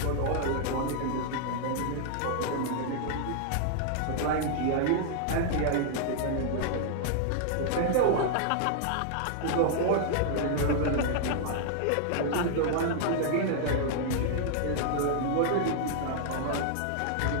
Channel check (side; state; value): both; different; correlation -0.01